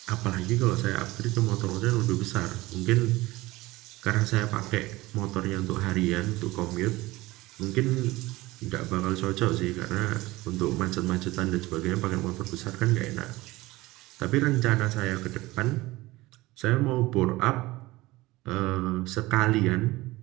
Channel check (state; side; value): quieter; left; 19.6 dB